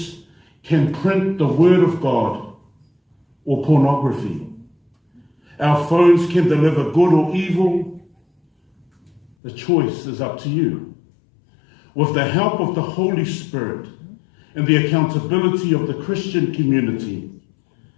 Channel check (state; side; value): drops out; right; at 9.3 s